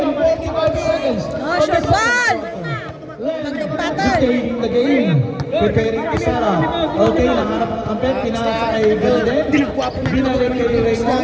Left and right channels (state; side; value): identical; both; correlation 1.00